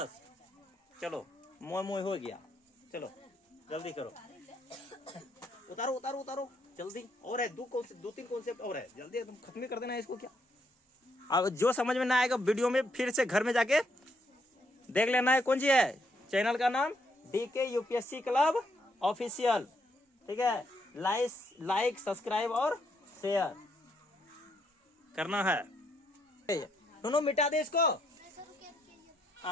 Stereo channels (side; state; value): both; normal; correlation 0.74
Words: चलो मोह मोह हो गया, चलो जल्दी करो, उतारो उतारो उतारो जल्दी, और है 2-3 कॉन्सेप्ट और है, जल्दी एकदम खत्म कर देना है इसको। क्या अब जो समझ में ना आएगा वीडियो में फिर से घर में जाके देख लेना है। कौन सी है, चैनल का नाम DK UPSC क्लब ऑफिशियल, ठीक है। लाइक सब्सक्राइब और शेयर करना है। दोनों मिटा दे इसको,